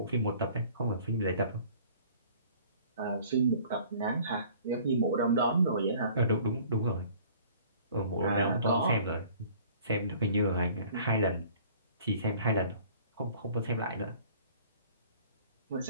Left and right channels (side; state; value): both; inverted; correlation -0.52